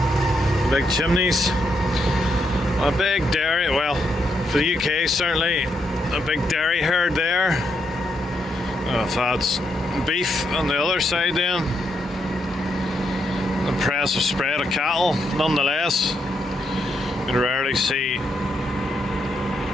big chimneys, a big dairy, well, for the UK certainly, a big dairy herd there. If that's beef on the other side then. Impressive spread of cattle, nonetheless. You rarely see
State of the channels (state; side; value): normal; both; correlation 0.79